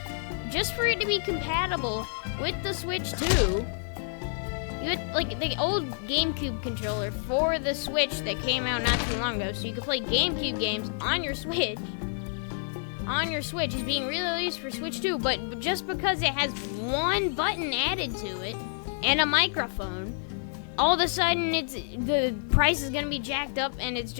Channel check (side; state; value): right; silent; digital silence